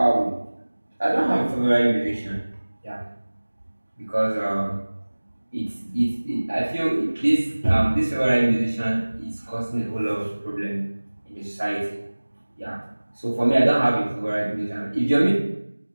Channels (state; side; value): inverted; both; correlation -1.00